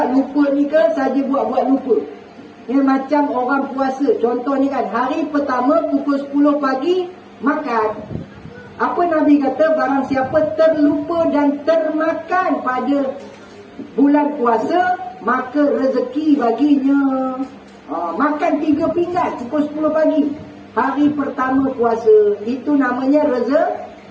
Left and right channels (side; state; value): both; identical; correlation 1.00